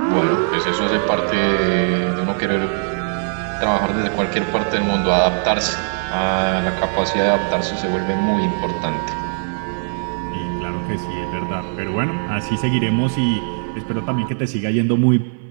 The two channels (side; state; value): left; silent; 58 dB below the other